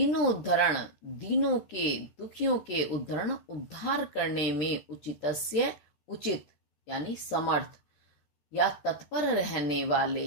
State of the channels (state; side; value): late; right; 14 ms